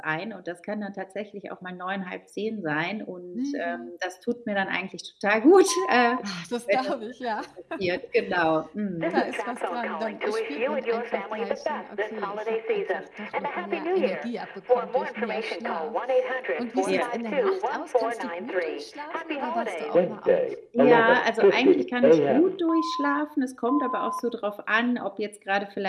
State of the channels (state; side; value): identical; both; correlation 1.00